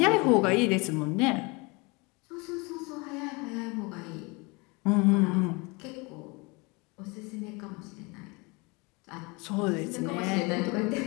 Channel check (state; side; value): quieter; right; 27.8 dB